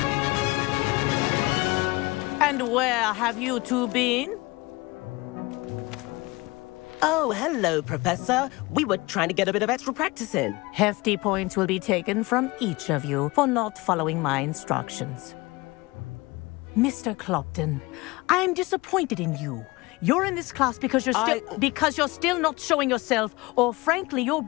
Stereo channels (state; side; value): quieter; right; 22.9 dB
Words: And where have you two been? Oh, hello, Professor. We were trying to get a bit of extra practice in. Hefty points will be taken from each of you for not following my instructions. Mr. Clopton, I'm disappointed in you. You're in this class because you're still not showing yourself, or frankly, your